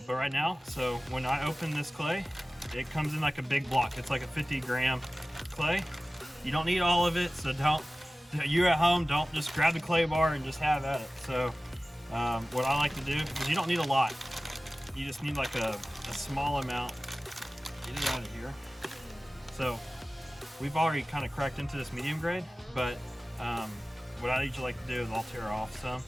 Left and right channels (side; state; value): both; normal; correlation 0.96